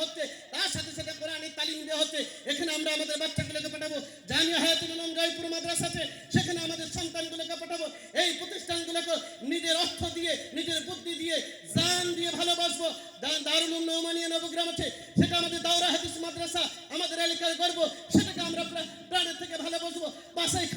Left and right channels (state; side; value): identical; both; correlation 1.00